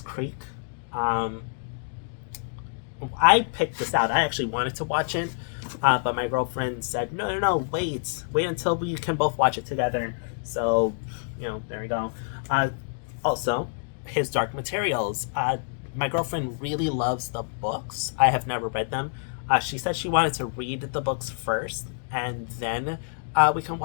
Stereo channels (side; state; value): right; silent; digital silence